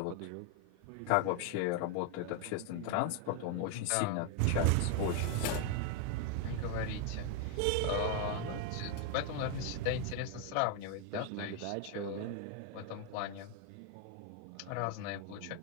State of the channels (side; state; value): both; different; correlation 0.01